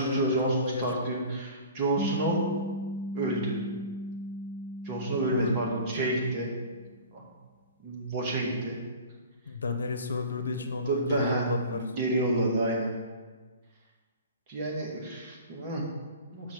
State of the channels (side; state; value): both; inverted; correlation -0.39